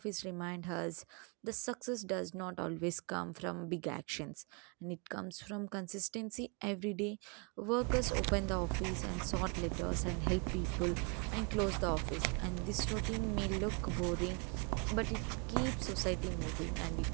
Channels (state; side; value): quieter; left; 35.0 dB